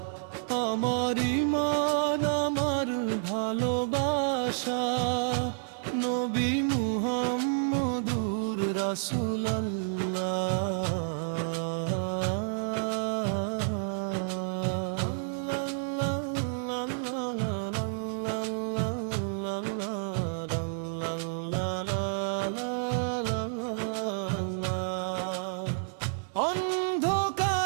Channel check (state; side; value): silent; left; 58 dB below the other